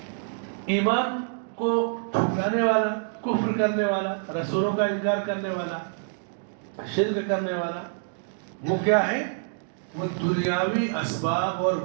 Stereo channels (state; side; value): silent; left; digital silence